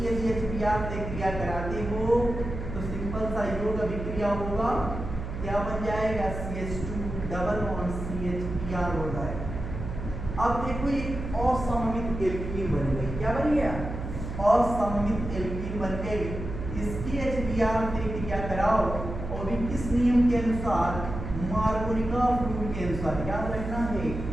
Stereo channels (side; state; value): right; noise; hum, 7 dB below the sound